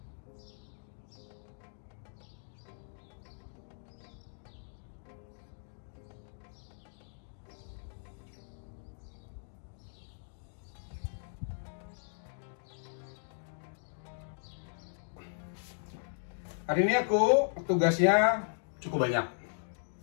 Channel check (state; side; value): silent; right; digital silence